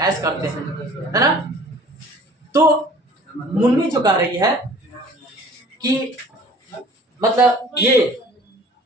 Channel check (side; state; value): both; normal; correlation 0.49